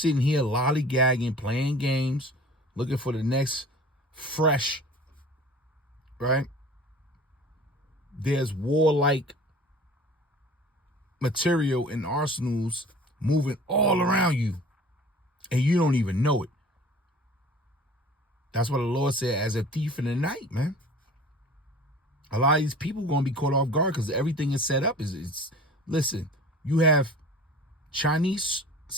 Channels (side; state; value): both; normal; correlation 0.44